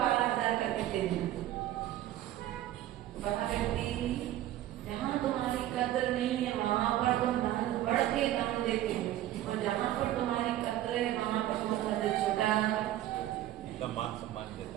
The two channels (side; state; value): left; quieter; 13.5 dB